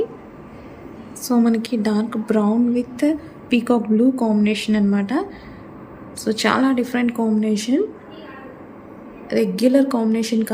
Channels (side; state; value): both; identical; correlation 1.00